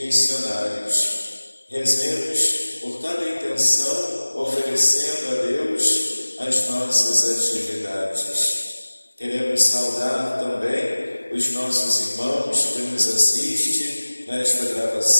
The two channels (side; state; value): both; inverted; correlation -1.00